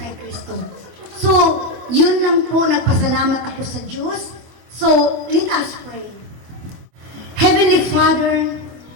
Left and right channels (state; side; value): late; left; 25 ms